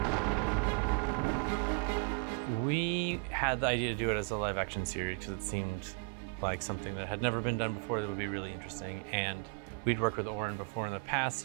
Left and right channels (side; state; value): left; quieter; 34.0 dB